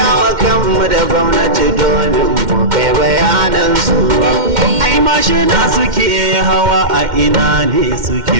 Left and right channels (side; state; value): left; late; 2.1 ms